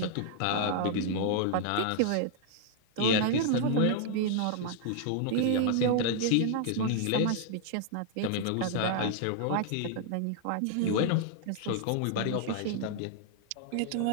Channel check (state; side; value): different; both; correlation 0.00